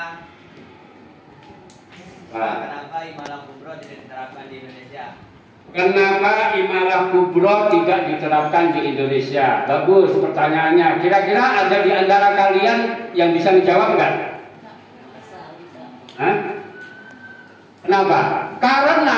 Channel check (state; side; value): identical; both; correlation 1.00